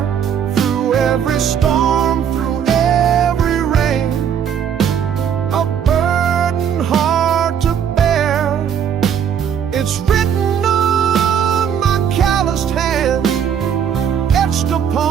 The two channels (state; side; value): quieter; left; 8.3 dB